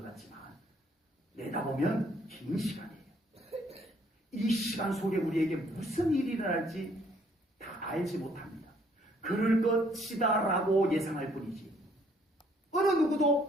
같지만 내다보면 긴 시간이에요. 이 시간 속에 우리에게 무슨 일이 일어날지 다 알지 못합니다. 그럴 것이다라고 예상할 뿐이지 어느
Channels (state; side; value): normal; both; correlation 0.65